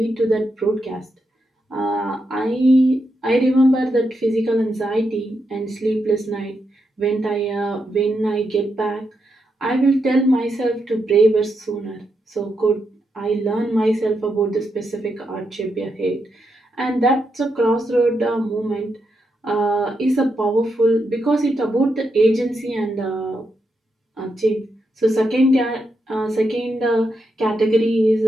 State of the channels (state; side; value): normal; both; correlation 0.83